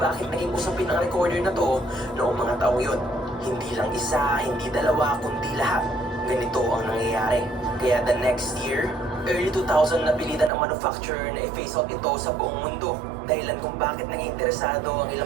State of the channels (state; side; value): drops out; left; at 10.5 s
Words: naging usapin ang recorder na to noong mga taong yun. Hindi lang isa, hindi dalawa, kundi lahat. Ganito ang nangyayari. Kaya the next year, early 2000 napilitan ang manufacturer na i-phase out ito sa buong mundo. Dahilan kung bakit naging interesado ang